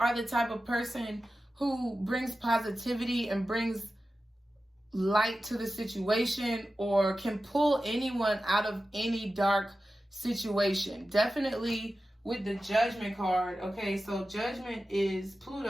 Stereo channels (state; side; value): normal; both; correlation 0.94